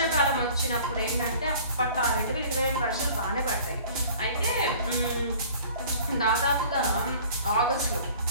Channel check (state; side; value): inverted; both; correlation -0.48